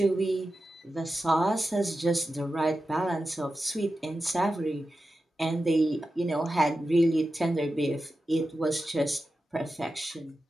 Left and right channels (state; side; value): normal; both; correlation 0.92